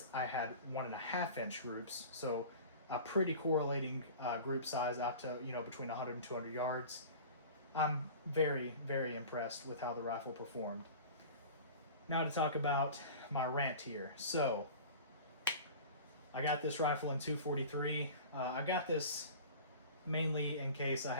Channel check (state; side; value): inverted; both; correlation -0.38